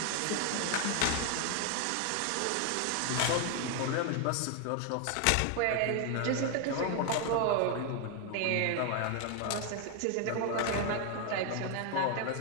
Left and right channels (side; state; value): both; different; correlation 0.01